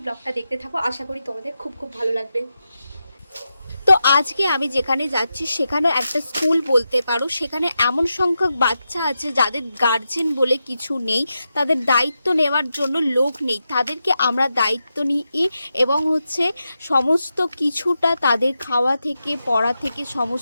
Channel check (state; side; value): inverted; both; correlation -0.88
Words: ব্লগটা দেখতে থাকো, আশা করি তোমাদের খুব ভালো লাগবে। তো আজকে আমি যেখানে যাচ্ছি সেখানে একটা স্কুল বলতে পারো। সেখানে এমন সংখ্যক বাচ্চা আছে যাদের গার্জেন বলে কিছু নেই, তাদের দায়িত্ব নেওয়ার জন্য লোক নেই। তাদেরকে আমরা দায়িত্ব নিই এবং হচ্ছে সমস্ত কিছুটা তাদের খাওয়া থেকে পড়া থেকে